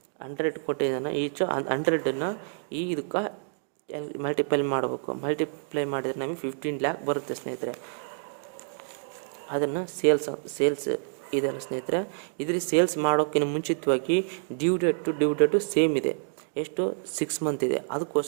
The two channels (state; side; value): silent; left; digital silence